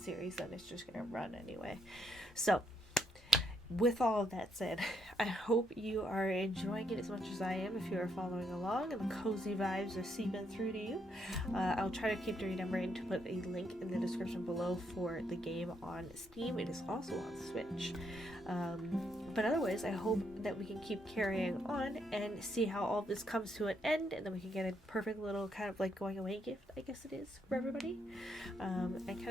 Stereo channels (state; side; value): normal; both; correlation 0.76